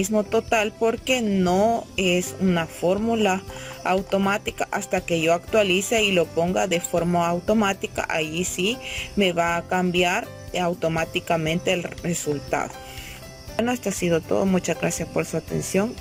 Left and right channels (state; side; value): identical; both; correlation 1.00